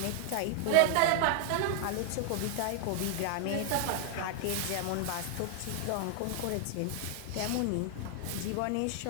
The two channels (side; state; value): both; different; correlation 0.00